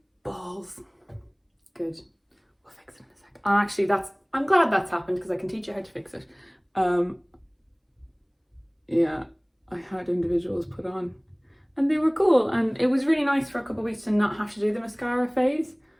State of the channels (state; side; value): identical; both; correlation 1.00